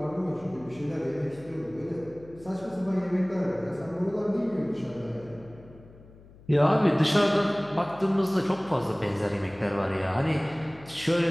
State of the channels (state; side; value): noise; left; hum, 22 dB below the sound